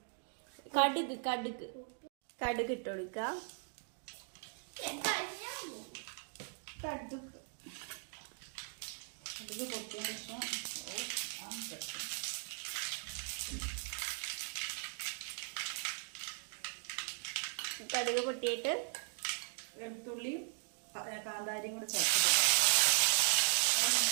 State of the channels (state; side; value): silent; left; 52 dB below the other